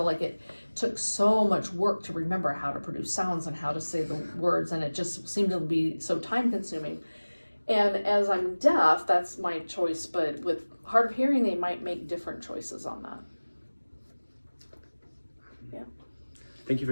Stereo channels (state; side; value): inverted; both; correlation -1.00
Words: like it took so much work to remember how to produce sounds and how to say the words. And it just seemed to be so time consuming. And as I'm deaf, that's my choice, but with hard of hearing, they might make different choices on that. Yeah. Thank you